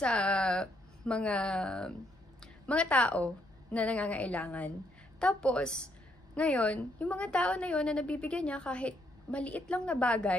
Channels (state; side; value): normal; both; correlation 0.73